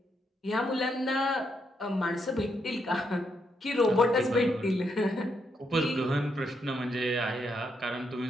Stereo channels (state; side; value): normal; both; correlation 0.79